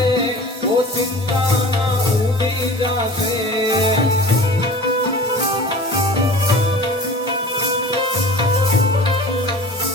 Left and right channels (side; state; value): both; normal; correlation 0.40